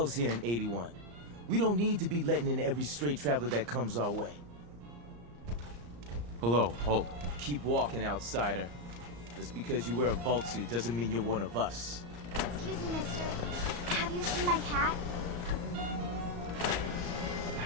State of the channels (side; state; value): left; late; 34 ms